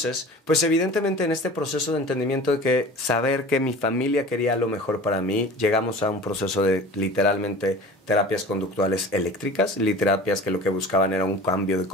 pues evidentemente en este proceso de entendimiento de que saber que mi familia quería lo mejor para mí, llegamos a un proceso de literalmente terapias conductuales eléctricas, terapias que lo que buscaban era un cambio de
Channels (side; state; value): both; normal; correlation 0.40